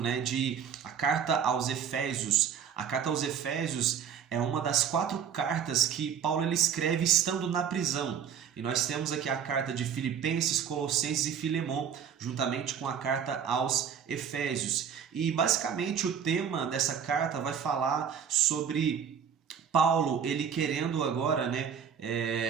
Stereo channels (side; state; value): left; quieter; 7.8 dB